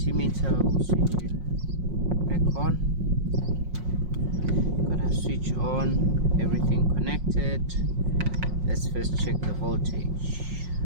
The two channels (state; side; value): late; left; 5.5 ms